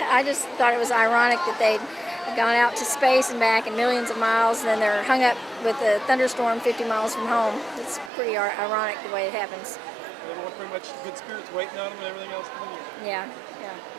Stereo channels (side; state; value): left; drops out; at 8.1 s